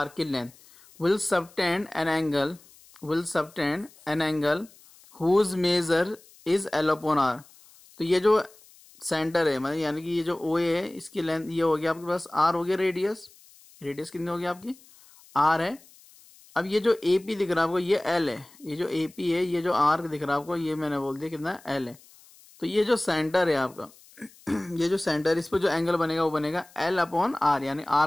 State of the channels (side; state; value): left; noise; hiss, 25 dB below the sound